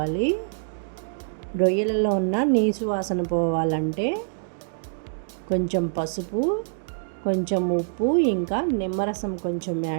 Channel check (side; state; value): left; silent; digital silence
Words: రొయ్యలలో ఉన్న నీసు వాసన పోవాలంటే కొంచెం పసుపు, కొంచెం ఉప్పు, ఇంకా నిమ్మరసం కొంచెం